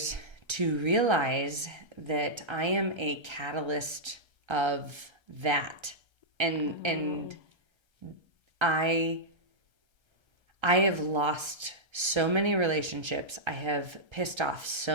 to realize that I am a catalyst of that. And I have lost so many relationships. I have pissed off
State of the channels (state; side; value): late; left; 1.3 ms